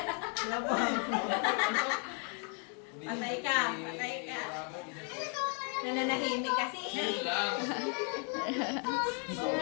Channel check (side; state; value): right; quieter; 39.3 dB